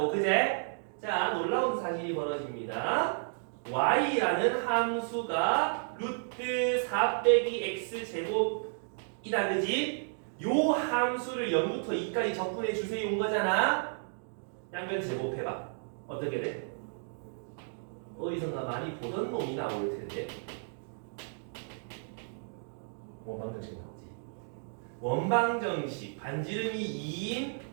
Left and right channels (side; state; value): left; silent; digital silence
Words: 그제? 자, 놀라운 사실이 벌어집니다. y라는 함수가 루트 4 빼기 x 제곱이다. 그지? 요 함수를 0부터 2까지 적분해 주세요 온 거잖아. 양변 제곱해봐. 어떻게 돼? 어디선가 많이 보던 놈이 나올 텐데. 원방정식 나오지. 원방정식 반지름이 2인